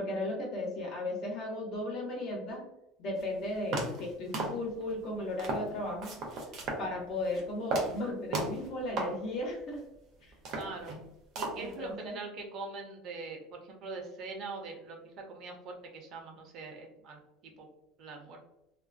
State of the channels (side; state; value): both; normal; correlation 0.39